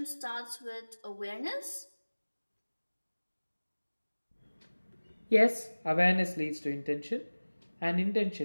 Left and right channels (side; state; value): both; inverted; correlation -1.00